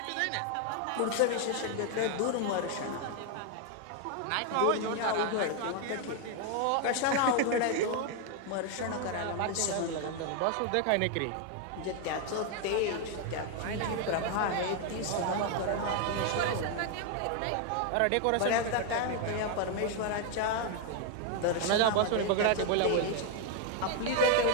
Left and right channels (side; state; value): both; different; correlation 0.00